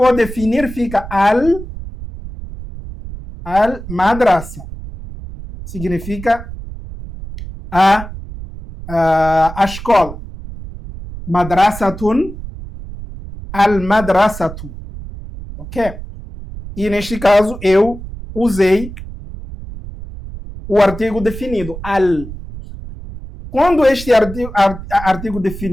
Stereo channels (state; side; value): noise; right; rumble, 12 dB below the sound